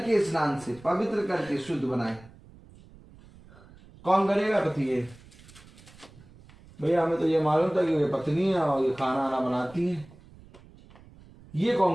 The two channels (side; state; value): right; noise; rumble, 23 dB below the sound